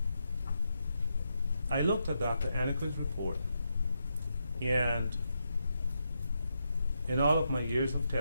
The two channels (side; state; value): both; inverted; correlation -0.83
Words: I looked at Dr. Anaker's report, and in all of my years of